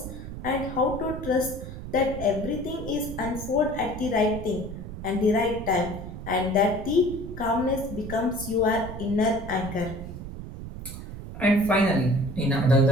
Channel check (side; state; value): right; noise; rumble, 10 dB below the sound